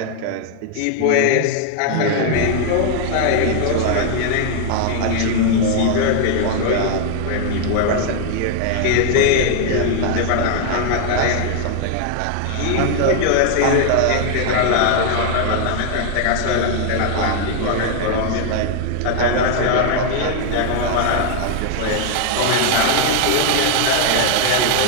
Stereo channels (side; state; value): both; different; correlation 0.00